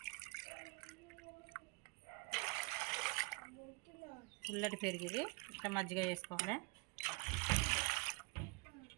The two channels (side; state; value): left; quieter; 28.4 dB